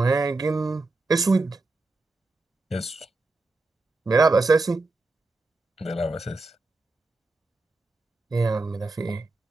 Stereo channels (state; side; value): quieter; left; 3.2 dB